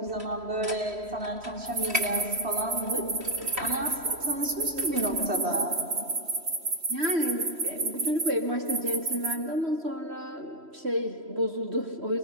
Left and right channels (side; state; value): left; late; 3.1 ms